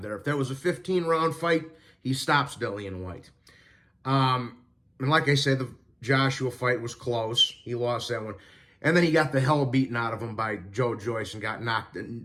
there. If that was a 15-round fight, he stops Dillian White. And like I said, the Joshua fight was close. He lost that one. And then he got the hell beaten out of him by Joe Joyce and got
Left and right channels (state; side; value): identical; both; correlation 1.00